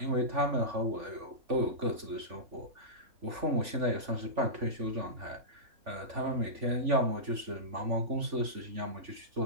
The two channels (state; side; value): late; left; 3.5 ms